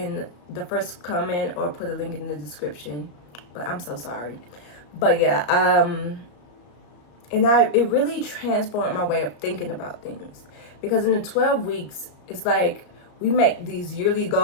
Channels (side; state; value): right; late; 34 ms